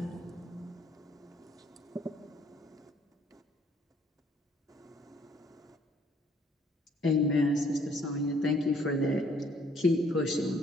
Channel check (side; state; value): both; normal; correlation 0.62